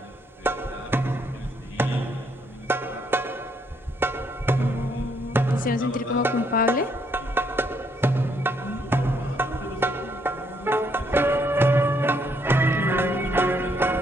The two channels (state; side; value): normal; both; correlation 0.71